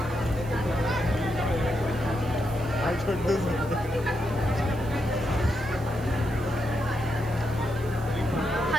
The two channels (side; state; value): right; noise; hiss, 21 dB below the sound